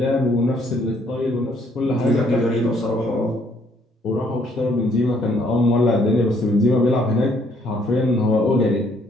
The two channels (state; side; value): normal; both; correlation 0.66